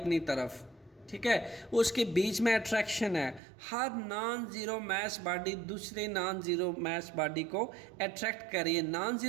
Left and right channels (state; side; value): drops out; left; at 3.4 s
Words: तरफ, ठीक है, उसके बीच में अट्रैक्शन है। हर नॉन ज़ीरो मैस बॉडी दूसरे नॉन ज़ीरो मैस बॉडी को अट्रैक्ट कर रही है। नॉन